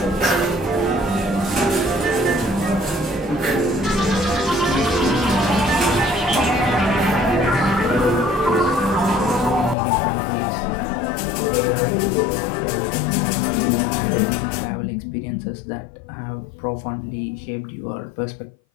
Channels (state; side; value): drops out; right; at 9.8 s